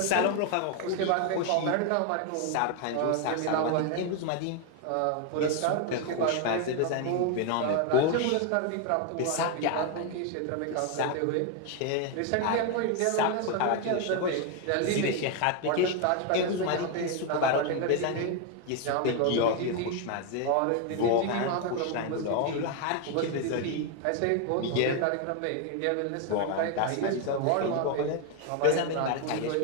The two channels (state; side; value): different; both; correlation 0.01